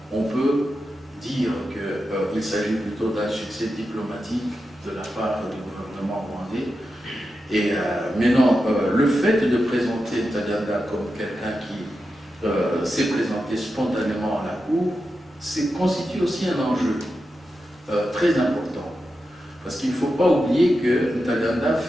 on peut dire qu'il s'agit plutôt d'un succès diplomatique de la part du gouvernement rwandais. Et maintenant, le fait de présenter Ntaganda comme quelqu'un qui s'est présenté spontanément à la Cour, constitue aussi un enjeu très important. Parce qu'il ne faut pas oublier que Ntaganda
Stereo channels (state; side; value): normal; both; correlation 0.89